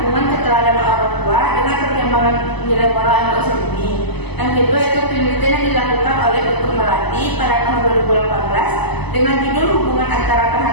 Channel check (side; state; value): right; late; 0.99 ms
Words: Keteladanan Orang Tua dengan Perkembangan Nilai Moral Anak Usia Dini. Yang kedua itu penelitian yang dilakukan oleh Dr. Melati pada tahun 2018 dengan judul Hubungan Antara